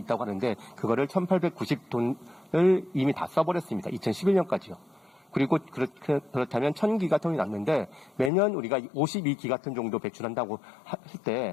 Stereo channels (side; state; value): right; drops out; at 8.3 s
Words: 하는데 그거를 1,890톤을 이미 다 써버렸습니다. 2011년까지요. 그리고 그렇다면 1,000기가톤이 남는데 매년 우리가 52기가톤 정도 배출한다고 할